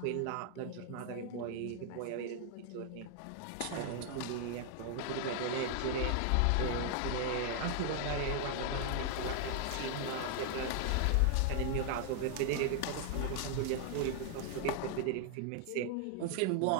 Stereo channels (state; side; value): different; both; correlation 0.00